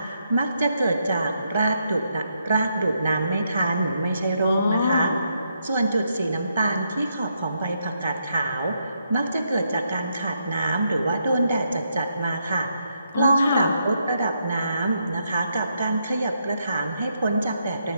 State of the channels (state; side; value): inverted; both; correlation -0.78